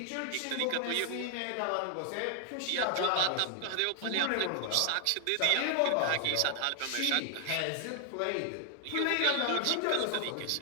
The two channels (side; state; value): both; different; correlation 0.00